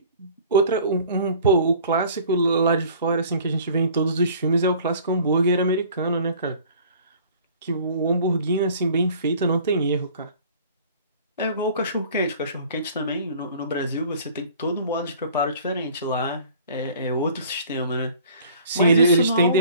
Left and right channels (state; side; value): inverted; both; correlation -0.49